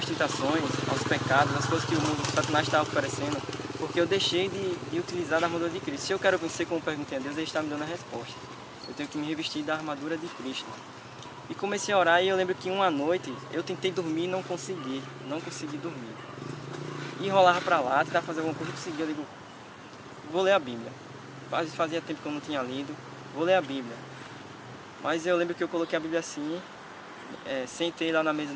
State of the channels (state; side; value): identical; both; correlation 1.00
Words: tentações, aos pecados, às coisas que o mundo, o Satanás está oferecendo, porque eu deixei de utilizar a armadura de Cristo. Se eu quero vencer, como perguntei a Deus, Ele está me dando a resposta. Eu tenho que me revestir da armadura de Cristo. E comecei a orar, e eu lembro que uma noite eu tentei dormir e não consegui dormir. E rolava para lá, tentava fazer alguma coisa, eu digo, vou ler a Bíblia. Fazia tempo que eu não tinha lido, vou ler a Bíblia. Mas eu lembro que eu coloquei a Bíblia assim, sentei lá na mesa